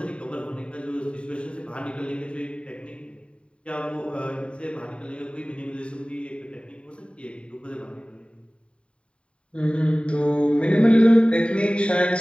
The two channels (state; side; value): late; right; 0.058 ms